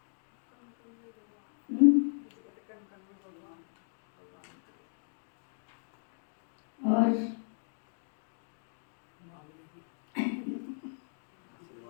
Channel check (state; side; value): silent; right; digital silence